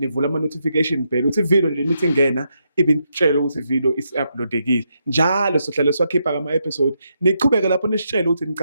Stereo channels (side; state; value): both; inverted; correlation -0.81